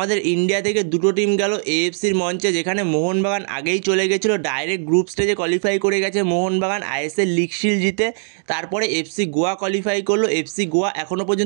ইন্ডিয়া থেকে দুটো টিম গেল এএফসির মঞ্চে, যেখানে মোহনবাগান আগেই চলে গেছিলো, ডাইরেক্ট গ্রুপ স্টেজে কোয়ালিফাই করে গেছে মোহনবাগান আইএসএল লিগ শিল্ড জিতে। তারপরে এফসি গোয়া কোয়ালিফাই করলো। এফসি গোয়া এখনও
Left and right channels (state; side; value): silent; left; digital silence